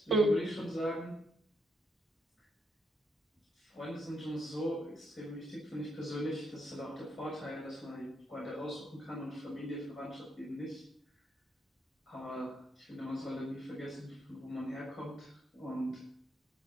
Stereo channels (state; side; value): normal; both; correlation 0.77